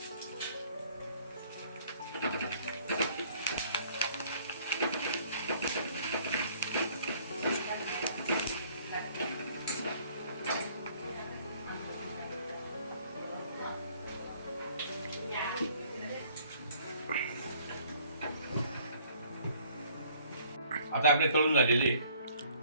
आता आपले तळून झालेले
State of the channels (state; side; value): inverted; both; correlation -0.58